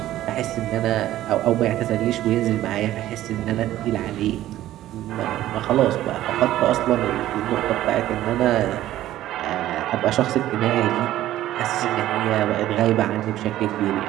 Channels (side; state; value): left; quieter; 13.9 dB